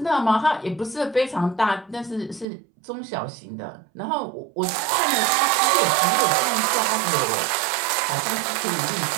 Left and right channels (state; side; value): drops out; left; at 2.5 s